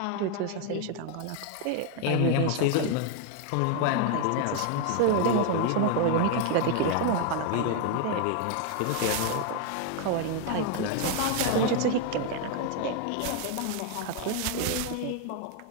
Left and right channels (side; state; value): both; different; correlation 0.01